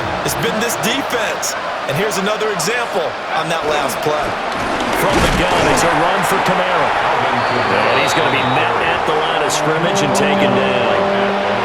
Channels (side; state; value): both; identical; correlation 1.00